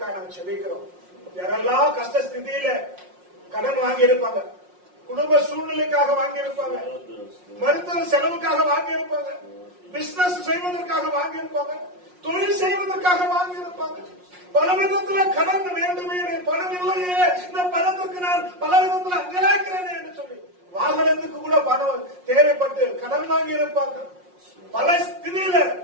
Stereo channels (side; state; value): left; late; 5.6 ms